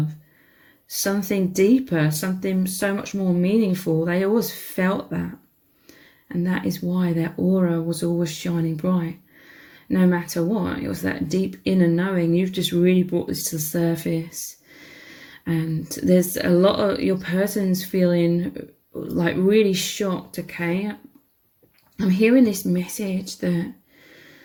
something deeper, something so much more meaningful. They always felt that. And that is why their aura was always shining bright. No matter what, it was that deep inner knowing. You've just really brought this to the surface. And there's a lot of your person's feeling like really shocked, okay? I'm hearing this message that,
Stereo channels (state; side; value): identical; both; correlation 1.00